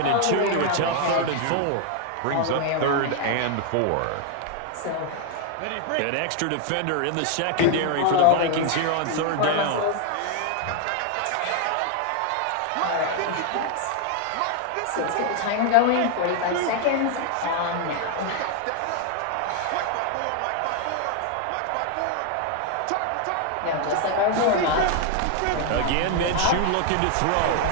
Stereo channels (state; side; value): different; both; correlation 0.00